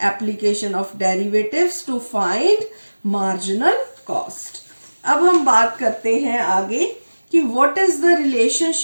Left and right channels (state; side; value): inverted; both; correlation -1.00